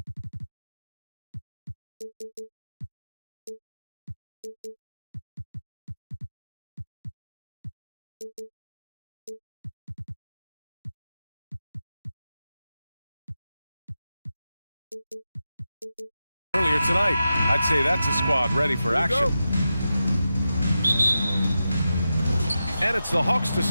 Earlier tonight, I'd say that's a squad ready for action. And it's the Hawks to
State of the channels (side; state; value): both; inverted; correlation -0.90